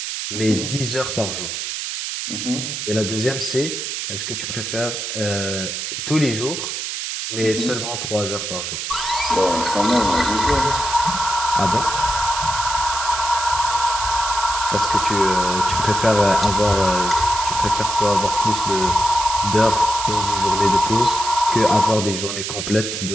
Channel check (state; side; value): noise; right; hiss, 4 dB below the sound